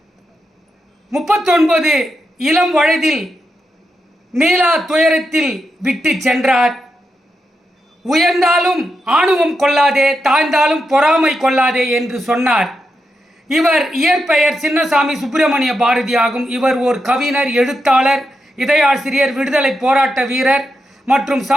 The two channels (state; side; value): normal; both; correlation 0.85